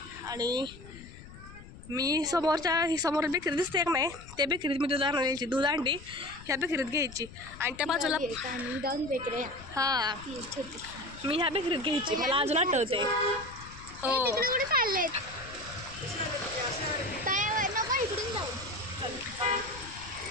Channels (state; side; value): noise; left; rumble, 17 dB below the sound